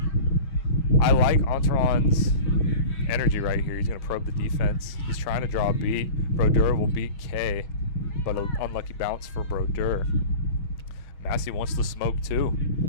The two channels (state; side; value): late; right; 6.3 ms